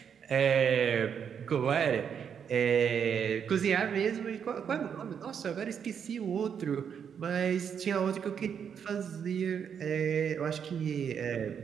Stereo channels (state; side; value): quieter; left; 7.6 dB